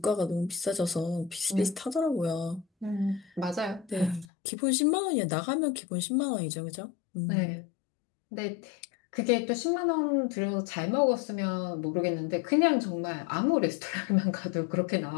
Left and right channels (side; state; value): right; drops out; at 4.2 s